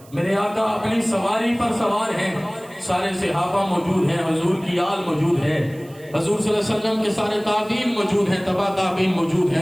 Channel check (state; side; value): noise; right; hiss, 25 dB below the sound